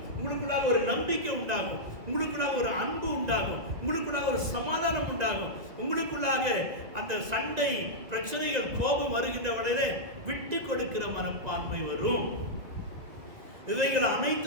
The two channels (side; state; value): left; late; 2.2 ms